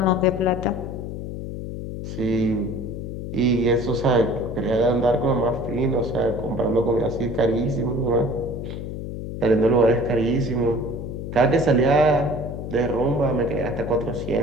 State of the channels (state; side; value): noise; left; hum, 7 dB below the sound